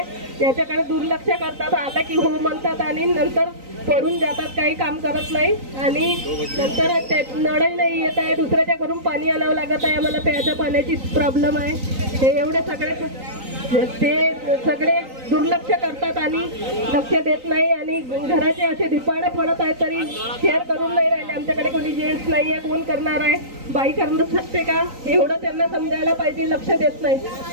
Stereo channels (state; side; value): late; left; 3.9 ms